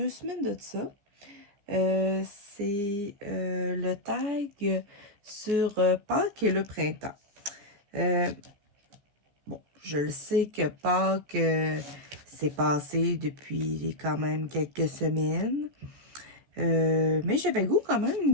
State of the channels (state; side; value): late; left; 15 ms